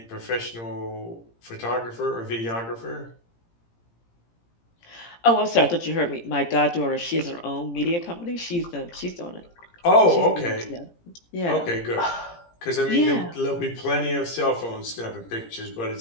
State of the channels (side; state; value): right; late; 17 ms